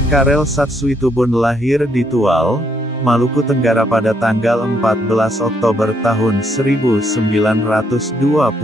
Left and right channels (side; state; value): both; normal; correlation 0.73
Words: Karel Satsuitubun lahir di Tual, Maluku Tenggara pada tanggal 14 Oktober tahun